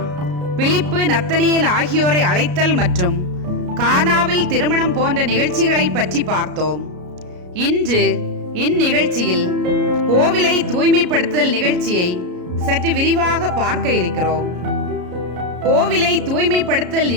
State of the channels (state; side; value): late; left; 33 ms